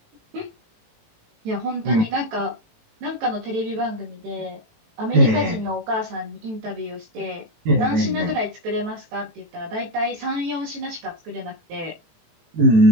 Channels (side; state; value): left; late; 18 ms